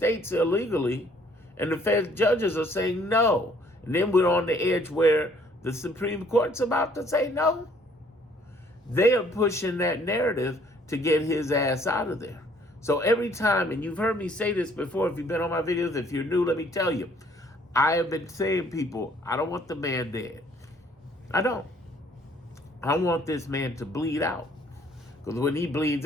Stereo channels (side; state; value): both; normal; correlation 0.61